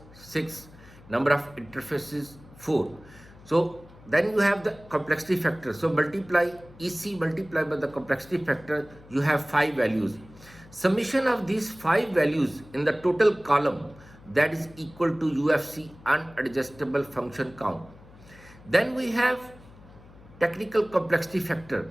6, number of interfaces 4. So then you have the complexity factor. So multiply EC multiplied by the complexity factor, you have 5 values. Summation of these 5 values in the total column, that is equal to UFC, unadjustable function count. Then we have technical complexity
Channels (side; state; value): left; noise; hum, 22 dB below the sound